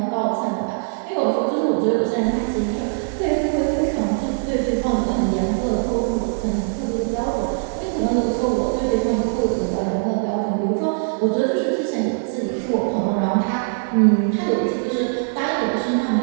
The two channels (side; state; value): left; silent; digital silence